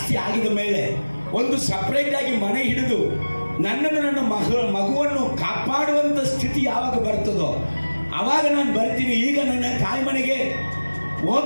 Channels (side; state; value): both; inverted; correlation -1.00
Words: ಆಗಿದ ಮೇಲೆ ಒಂದು ಸಪ್ರೇಟ್ ಆಗಿ ಮನೆ ಹಿಡಿದು ನನ್ನನ್ನು ನನ್ನ ಮಗುವನ್ನು ಕಾಪಾಡುವಂಥ ಸ್ಥಿತಿ ಯಾವಾಗ ಬರ್ತದೋ ಅವಾಗ ನಾನು ಬರ್ತೀನಿ. ಈಗ ನನ್ನ ತಾಯಿ ಮನೆಗೆ